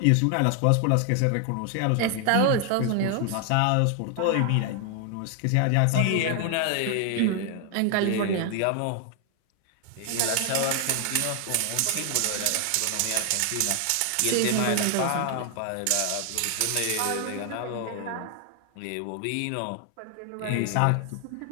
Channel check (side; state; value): both; different; correlation 0.00